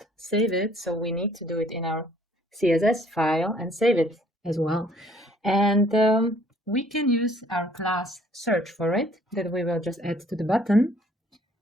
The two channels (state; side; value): normal; both; correlation 0.60